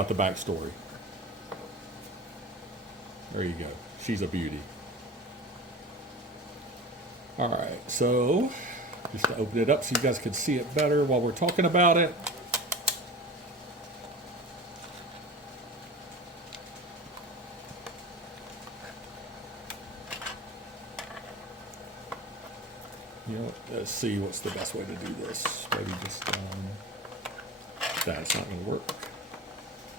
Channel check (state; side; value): normal; both; correlation 0.33